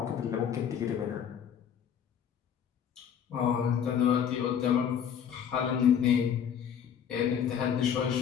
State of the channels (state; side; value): quieter; right; 8.3 dB